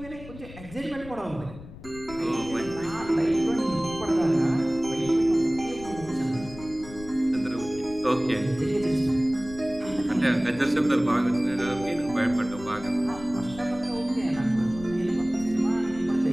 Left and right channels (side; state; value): left; noise; rumble, 16 dB below the sound